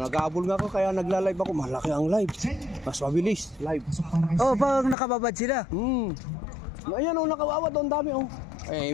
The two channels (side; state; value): right; drops out; at 5.0 s